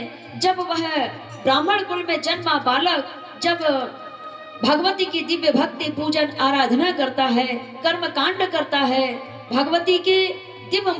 जब वह ब्राह्मण कुल में जन्मा बालक जब भगवती की दिव्य भक्ति पूजन आराधना करता है, कर्म कांड करता है, भगवती के दिव्य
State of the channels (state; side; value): identical; both; correlation 1.00